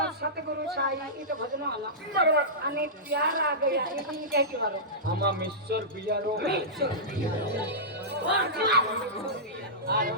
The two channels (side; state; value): both; normal; correlation -0.16